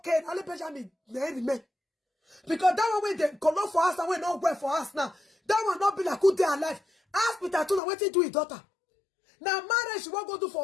Now let Benjamin man. Because that one when they color for us and we not work for us now. That one not be like good day alive. Ask Peter Tuna what he do his daughter. Now marriage she won't go do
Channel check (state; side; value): drops out; right; at 7.8 s